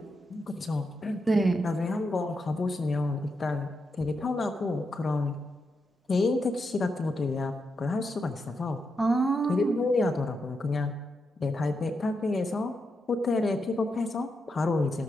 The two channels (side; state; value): both; normal; correlation 0.84